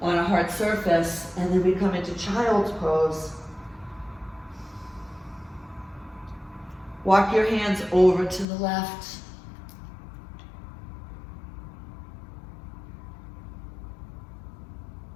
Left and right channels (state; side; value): drops out; right; at 8.5 s